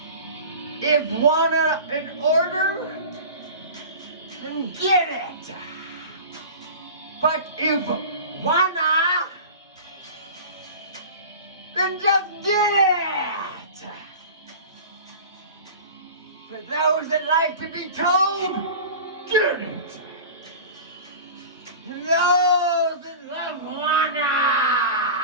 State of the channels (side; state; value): both; inverted; correlation -0.36